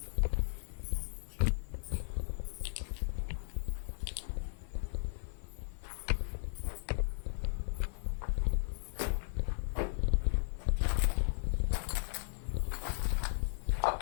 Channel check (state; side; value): silent; right; 54 dB below the other